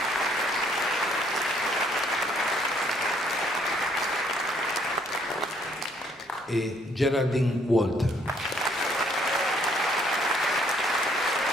e Geraldine Walter.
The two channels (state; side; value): normal; both; correlation 0.65